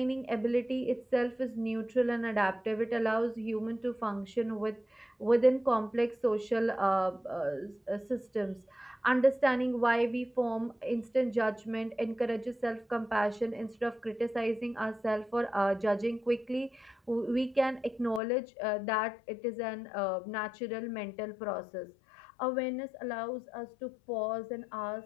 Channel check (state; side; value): drops out; right; at 18.2 s